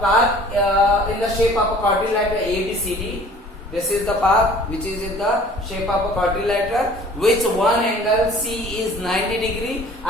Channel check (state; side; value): normal; both; correlation 0.49